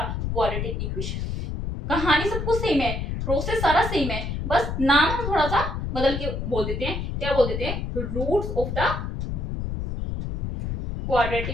quadratic equation. कहानी सब कुछ सेम है, प्रोसेस सारा सेम है, बस नाम हम थोड़ा सा बदल के बोल देते हैं। क्या बोल देते हैं? Roots of the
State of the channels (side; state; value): left; noise; rumble, 3 dB below the sound